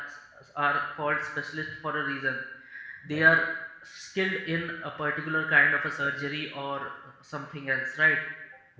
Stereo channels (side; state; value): both; identical; correlation 1.00